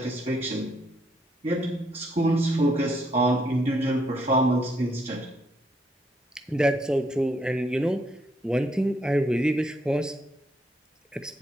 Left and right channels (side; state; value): both; normal; correlation 0.73